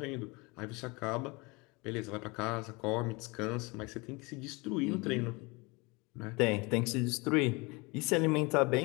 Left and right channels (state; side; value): quieter; right; 26.8 dB